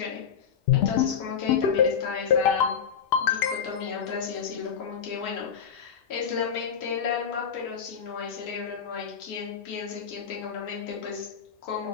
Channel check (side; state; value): right; quieter; 7.4 dB